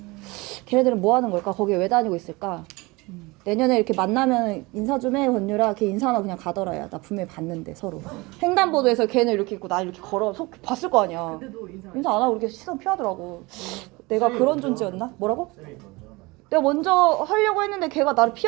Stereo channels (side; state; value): left; quieter; 23.9 dB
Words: 걔네들은 뭐 하는 걸까? 거기에 왜 다니고 있을까? 내년에 이렇게 만나면 인사 좀 해, 권유라. 걔 인사하나 그냥 가더라. 야, 나 분명히 봤는데 서로 횡단보도에서 걔는 이렇게 있고 나 이렇게 걸어 봤을 거 아니야. 인사 안 하고 이렇게 시선 피하더라고. 내가 그런 존재였나? 뭐라고? 내가 먼저 하려고 했는데 걔가 나를